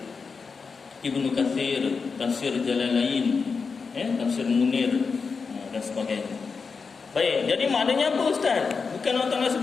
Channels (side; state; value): right; quieter; 5.1 dB